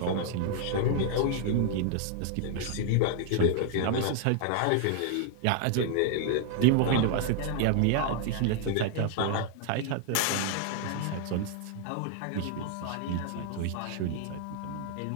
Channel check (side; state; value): both; different; correlation 0.00